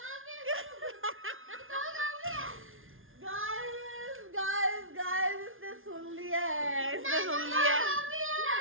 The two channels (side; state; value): left; late; 0.59 ms